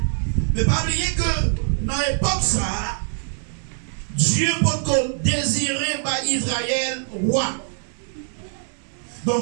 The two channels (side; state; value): left; silent; 60 dB below the other